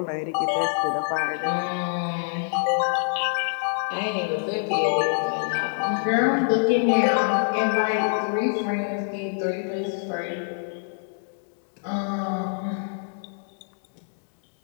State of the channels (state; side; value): silent; right; digital silence